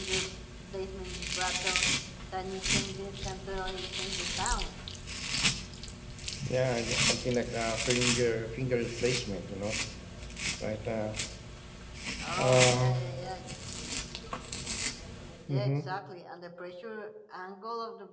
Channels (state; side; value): identical; both; correlation 1.00